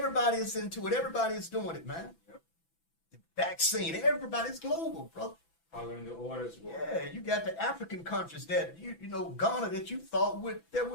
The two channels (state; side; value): late; right; 6.0 ms